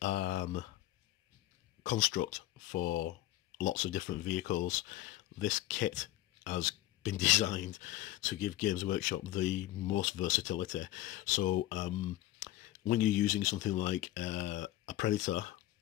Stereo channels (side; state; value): right; quieter; 15.4 dB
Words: construct for lots of different vehicles, this kit has been designed to give Games Workshop the most versatility. So when you're using something like a Predator,